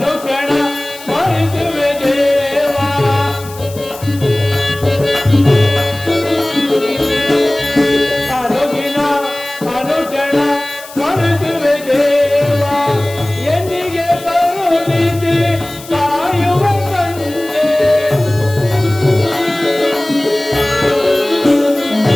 ಸ್ಮರಿಸುವೆ ದೇವ ಅನುದಿನ ಅನುಕ್ಷಣ ಸ್ಮರಿಸುವೆ ದೇವ ಎಂದಿಗೆ ಕರುಣಿಸಿ ಕಾಯುವ ತಂದೆ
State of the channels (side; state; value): left; noise; hiss, 17 dB below the sound